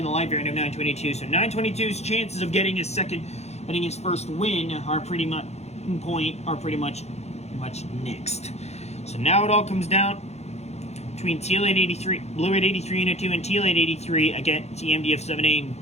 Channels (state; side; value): late; right; 0.31 ms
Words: the light variant of 922. So 922's chances of getting his first win are pretty much nixed. So now it all comes down between Teal 883, Blue 883 Unit 2 and Teal 883 against EMDF-7A and